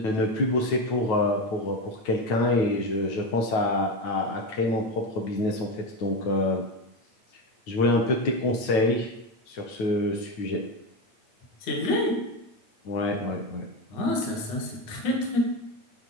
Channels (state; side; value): late; right; 9.2 ms